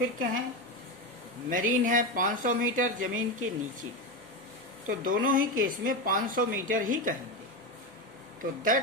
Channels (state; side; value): normal; both; correlation 0.15